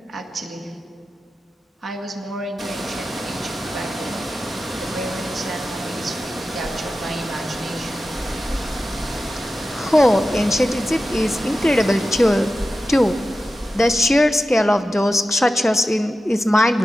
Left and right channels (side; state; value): both; normal; correlation 0.93